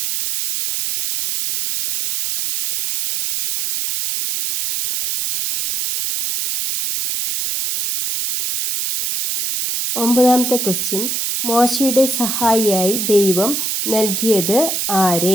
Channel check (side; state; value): right; noise; hiss, 2 dB below the sound